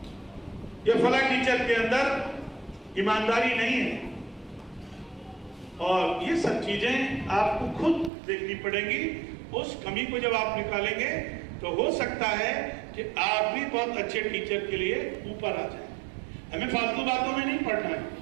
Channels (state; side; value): drops out; left; at 8.1 s